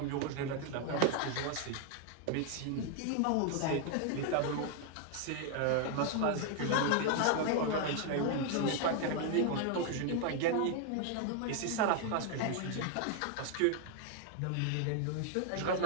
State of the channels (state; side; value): different; both; correlation 0.00